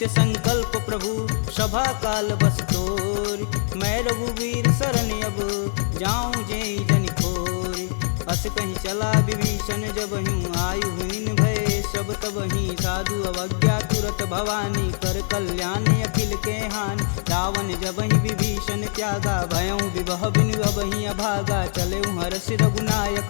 संकल्प प्रभु सभा काल बस तोर मैं रघुवीर शरण अब जाऊं जेई जन खोरी अस कहीं चला विभीषण जब हूँ आयुहीन भय सब तब ही साधु अवज्ञा तुरत भवानी कर कल्याण अखिल के हानि रावण जब ही विभीषण त्यागा भयऊ विवह बिनु अब ही अभागा चले हरस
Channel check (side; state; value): right; silent; 63 dB below the other